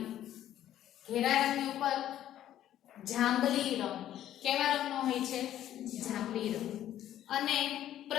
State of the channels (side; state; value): right; quieter; 12.0 dB